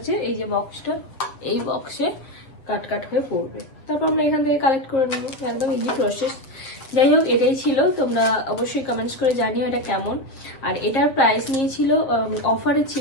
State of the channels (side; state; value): right; late; 7.2 ms